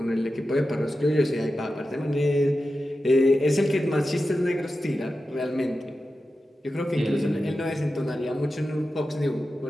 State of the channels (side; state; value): both; normal; correlation 0.92